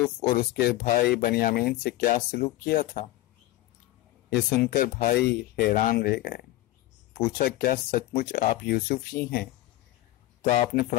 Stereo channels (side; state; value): right; quieter; 16.8 dB